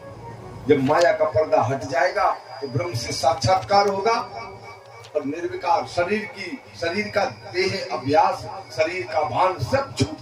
जब माया का पर्दा हट जाएगा तो ब्रह्म से साक्षात्कार होगा और निर्विकार शरीर का देह अभ्यास, शरीर का भान सब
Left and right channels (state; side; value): identical; both; correlation 1.00